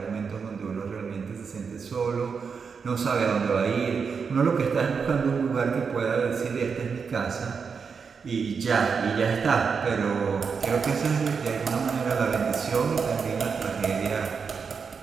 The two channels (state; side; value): quieter; left; 5.7 dB